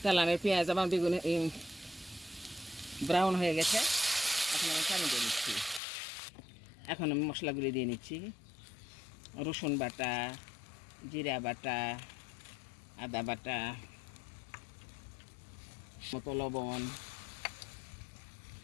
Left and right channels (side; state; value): right; drops out; at 5.8 s